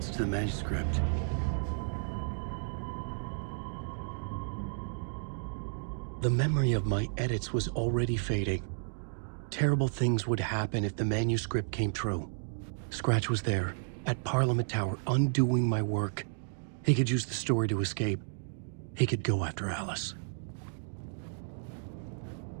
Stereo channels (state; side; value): silent; left; digital silence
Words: to the manuscript. The memory of my edits was already fading. Terrible things would happen if the manuscript came true. Scratch was there, at Parliament Tower, undoing my work. He could use the story to escape. He could go after Alice.